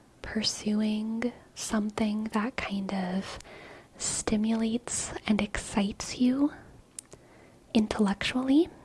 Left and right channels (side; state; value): both; identical; correlation 1.00